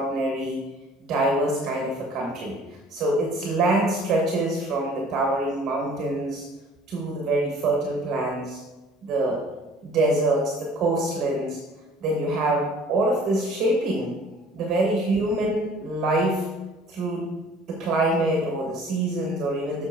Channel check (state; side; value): normal; both; correlation 0.51